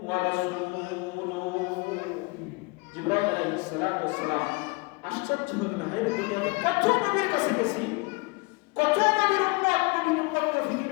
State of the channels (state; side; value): quieter; right; 27.0 dB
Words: ওয়া রাসূলুহু। জিবরাইল আলাইহিস সালাতু ওয়াস সালাম আশ্চর্য হয়ে গেলেন, হায় রে, দুনিয়াতে কত নবীর কাছে গেছি, কত নবীর উম্মতকে ফিকির